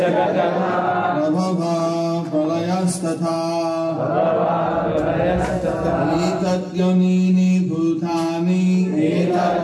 Prabhava Pralayas Tata Etat Yonini Bhutani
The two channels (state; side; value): identical; both; correlation 1.00